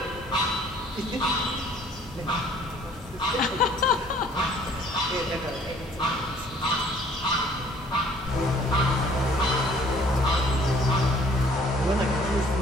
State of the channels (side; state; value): both; normal; correlation 0.56